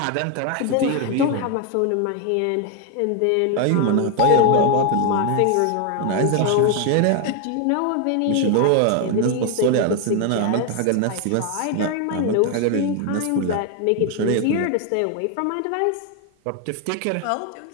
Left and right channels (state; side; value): different; both; correlation 0.01